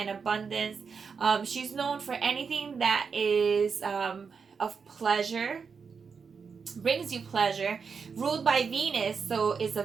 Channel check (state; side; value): quieter; left; 5.7 dB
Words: abundance. She's known for anything that is of pleasure, brings you pleasure, ruled by Venus, so it's a